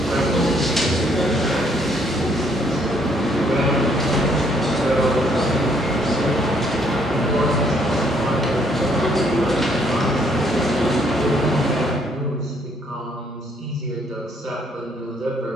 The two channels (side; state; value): both; normal; correlation 0.67